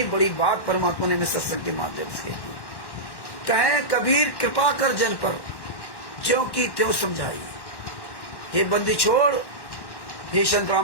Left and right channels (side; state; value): right; late; 1.1 ms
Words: बड़ी बात परमात्मा ने हमें सत्संग के माध्यम से कही। कहें कबीर कृपा कर जन पर, ज्यों की त्यों समझाई। हे बंदी छोड़, हे संत